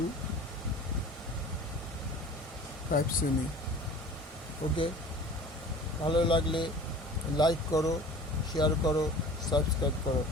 5 সেমি। ওকে, ভালো লাগলে লাইক করো, শেয়ার করো, সাবস্ক্রাইব করো।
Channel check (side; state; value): both; normal; correlation 0.42